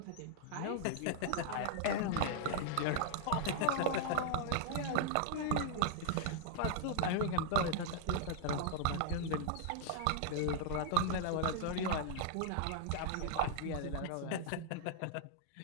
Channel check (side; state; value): both; different; correlation 0.00